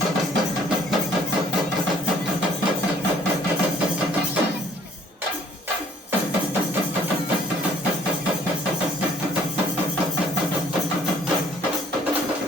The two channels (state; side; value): normal; both; correlation 0.60